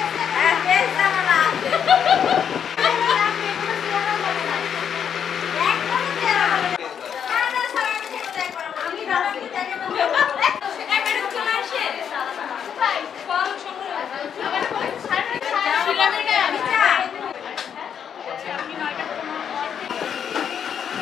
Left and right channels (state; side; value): quieter; right; 8.1 dB